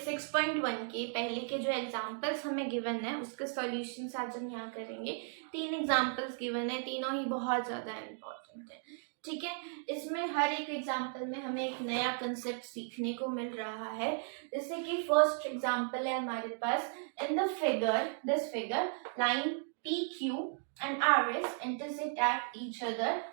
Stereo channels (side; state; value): left; silent; 54 dB below the other